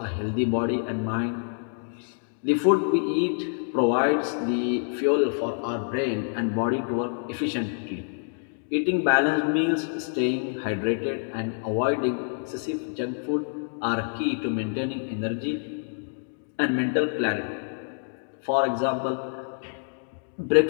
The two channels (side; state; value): right; silent; digital silence